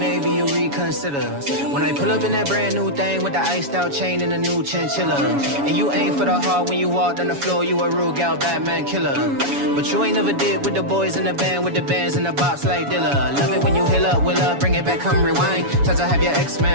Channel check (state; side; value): late; left; 7.1 ms